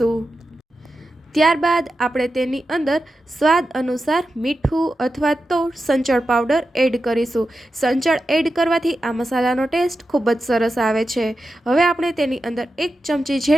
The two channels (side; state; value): both; normal; correlation 0.90